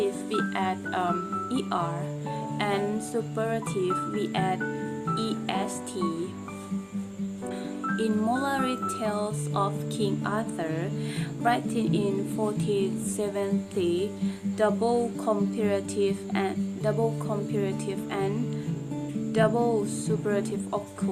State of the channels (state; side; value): identical; both; correlation 1.00